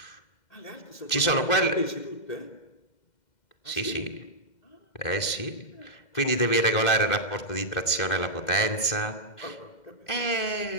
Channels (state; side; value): late; right; 2.1 ms